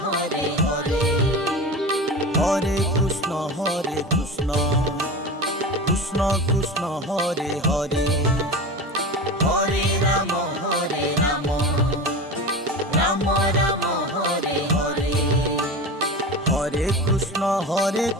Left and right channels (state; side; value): normal; both; correlation 0.29